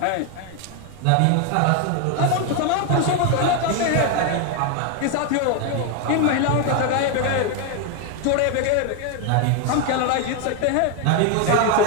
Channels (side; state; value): both; different; correlation 0.01